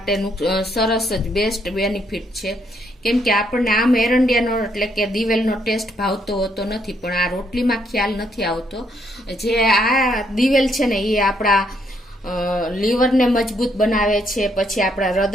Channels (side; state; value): both; normal; correlation 0.72